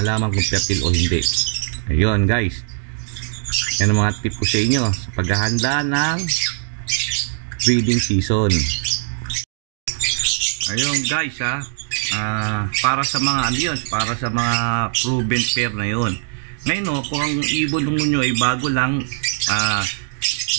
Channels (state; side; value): silent; left; digital silence